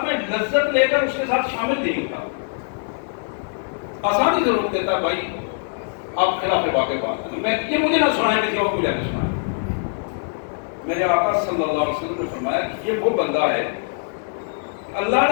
میں لذت لے کر اس کے ساتھ شامل نہیں ہوتا، آسانی سے روک دیتا ہے، بھائی آپ خلاف واقع بات ہے، یہ مجھے نہ سنائیں، کسی اور کو جا کے سنائیں۔ میرے آقا صلی اللہ علیہ وسلم نے فرمایا کہ یہ وہ بندہ ہے، اللہ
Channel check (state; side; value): silent; right; digital silence